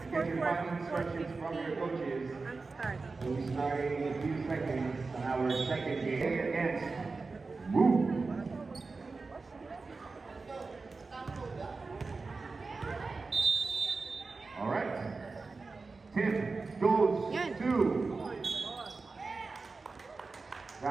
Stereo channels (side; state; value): left; quieter; 4.0 dB